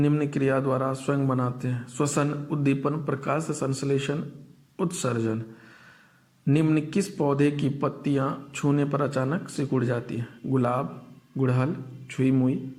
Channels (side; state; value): both; identical; correlation 1.00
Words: क्रिया द्वारा स्वयं बनाते हैं: श्वसन, उद्दीपन, प्रकाश संश्लेषण, उत्सर्जन। निम्न किस पौधे की पत्तियां छूने पर अचानक सिकुड़ जाती हैं? गुलाब, गुड़हल, छुई मुई